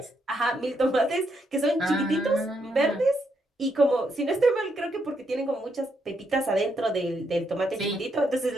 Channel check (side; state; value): both; normal; correlation 0.78